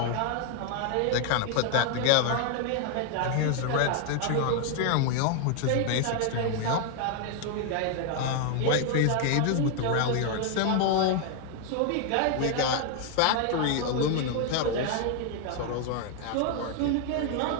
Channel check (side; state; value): both; different; correlation 0.00